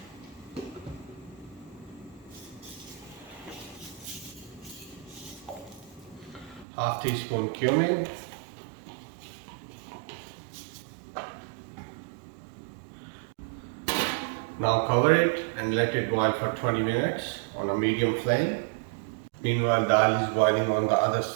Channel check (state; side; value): drops out; left; at 6.7 s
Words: Half teaspoon cumin. Now cover it and let it boil for 20 minutes on a medium flame. Meanwhile, dal is boiling on the other